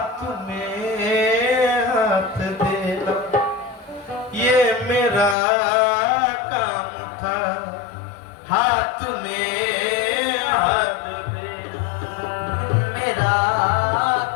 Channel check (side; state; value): right; drops out; at 5.4 s